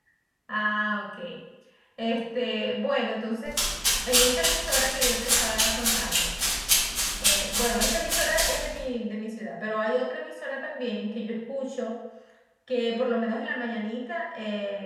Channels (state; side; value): identical; both; correlation 1.00